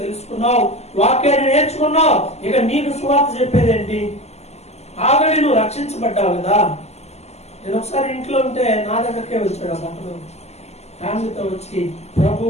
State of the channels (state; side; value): late; right; 0.31 ms